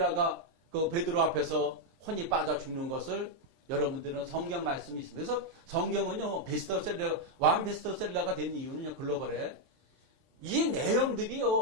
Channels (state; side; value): late; left; 23 ms